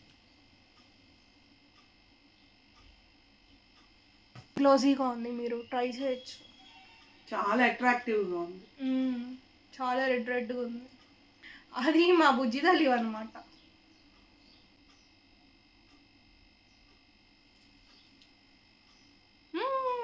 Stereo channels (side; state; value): both; identical; correlation 1.00